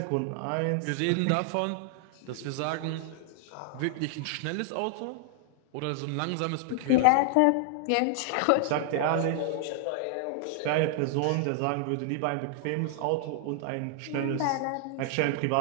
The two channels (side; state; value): both; different; correlation 0.00